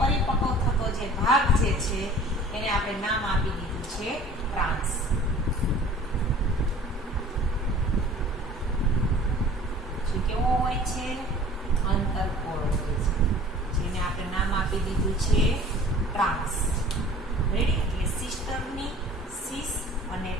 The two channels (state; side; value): normal; both; correlation 0.47